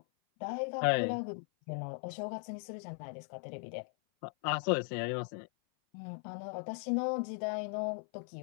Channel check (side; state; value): right; silent; 53 dB below the other